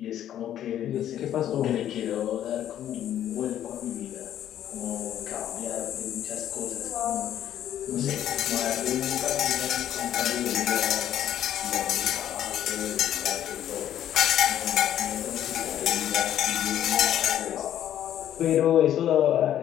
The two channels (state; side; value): quieter; right; 11.2 dB